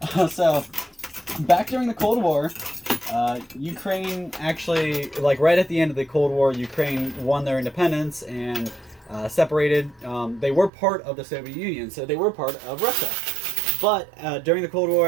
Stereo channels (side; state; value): left; drops out; at 10.7 s